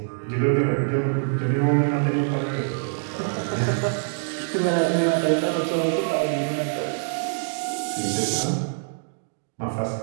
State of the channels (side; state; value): left; silent; digital silence